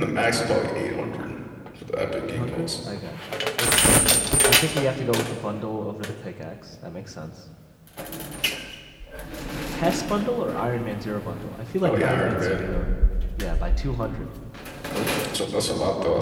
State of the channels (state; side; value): identical; both; correlation 1.00